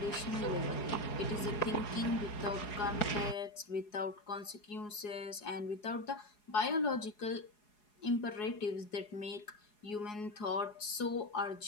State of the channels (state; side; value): late; right; 4.8 ms